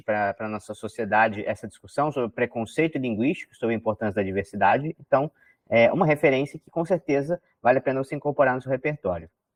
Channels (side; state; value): both; identical; correlation 1.00